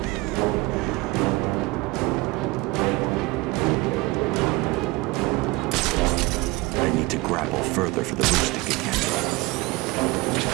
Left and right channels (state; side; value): quieter; left; 22.7 dB